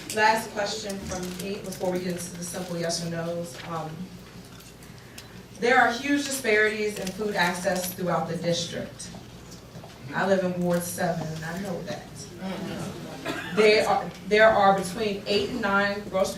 Last question from me before we get into the simple yes or no's. There are huge disparities in food access throughout the district. I live in Ward 7, and I know that. There are between 8 and 9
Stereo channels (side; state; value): both; identical; correlation 1.00